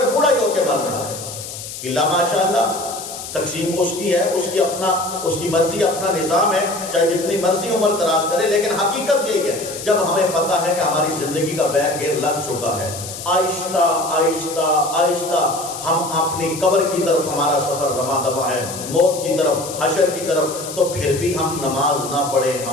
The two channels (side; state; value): left; noise; hiss, 10 dB below the sound